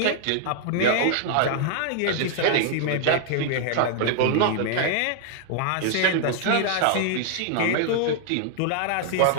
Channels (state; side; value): different; both; correlation 0.00